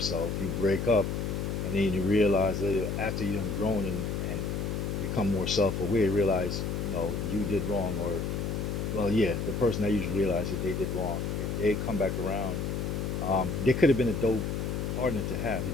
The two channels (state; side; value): noise; left; hum, 2 dB below the sound